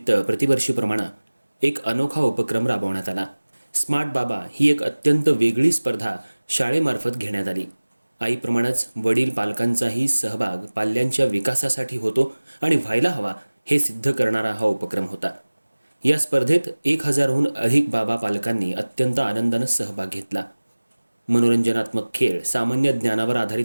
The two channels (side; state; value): both; inverted; correlation -1.00